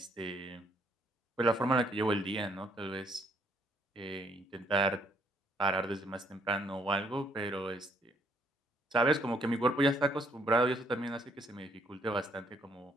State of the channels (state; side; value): normal; both; correlation 0.67